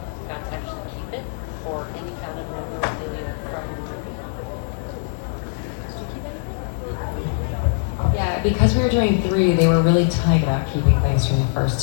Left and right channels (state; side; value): silent; right; digital silence